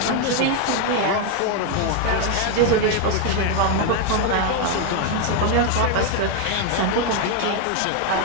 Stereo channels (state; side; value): different; both; correlation 0.01